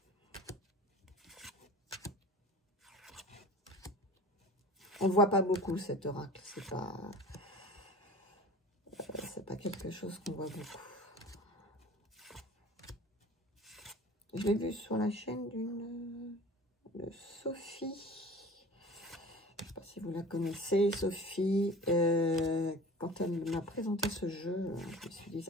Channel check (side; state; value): both; normal; correlation 0.40